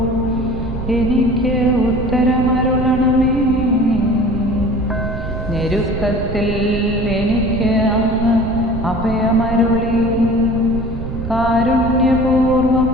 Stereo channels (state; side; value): noise; right; rumble, 6 dB below the sound